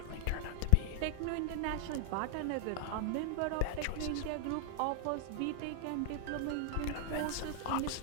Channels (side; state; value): both; different; correlation -0.01